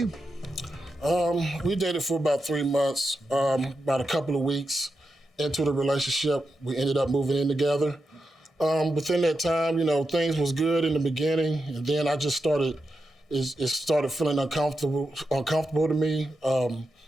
We dated for about 3 months. About a couple of weeks into the relationship, we ended up moving in together. Within that time, things was good in the beginning, and then I just started feeling uncomfortable to me.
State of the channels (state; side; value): normal; both; correlation 0.88